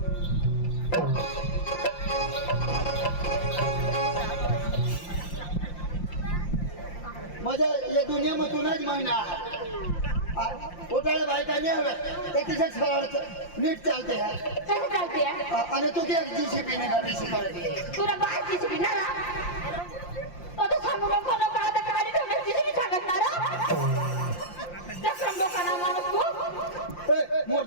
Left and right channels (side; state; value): right; late; 5.7 ms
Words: माझ्या या दुनियामधूनच महिना उठाळे बायका नाही हव्या ते तिच्या सरळ नीट चालते आहे कसं चालते आणि तू काय जीसीपी ने गाडी शिकवते तुला बाय जीसीबी ना तो सांगू नको नको आता गाडी ठेवण्यास जीसीबी सांगत ना चक्रम लोकांना माणूस तू